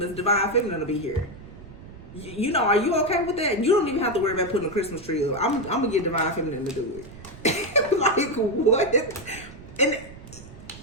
divine feminine will be here. You know, are you okay with that? You don't even have to worry about putting a Christmas tree up. I'm going to get divine feminine to do it. Like, what? And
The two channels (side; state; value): right; noise; rumble, 17 dB below the sound